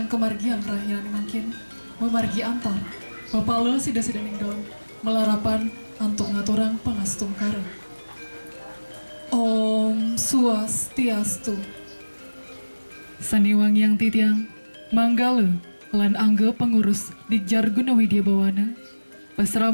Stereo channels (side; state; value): both; inverted; correlation -1.00